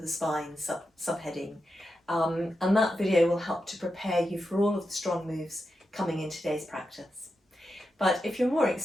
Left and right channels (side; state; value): both; normal; correlation 0.88